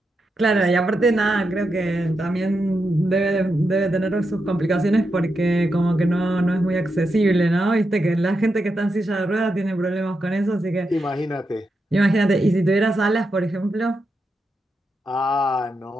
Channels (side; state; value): both; normal; correlation 0.86